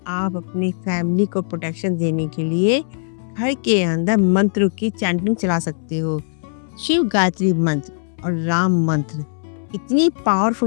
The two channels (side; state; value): right; silent; 66 dB below the other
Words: आप अपनी फैमिली को प्रोटेक्शन देने के लिए घर के अंदर मंत्र की चैंटिंग चला सकते हो। शिव गायत्री मंत्र और राम मंत्र इतनी